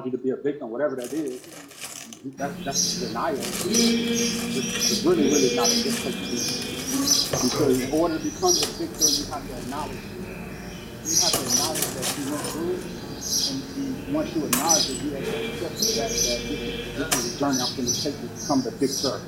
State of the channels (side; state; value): both; identical; correlation 1.00